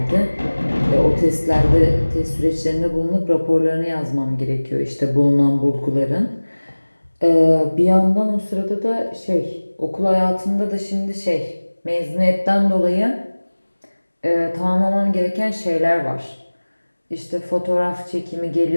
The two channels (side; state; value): both; inverted; correlation -1.00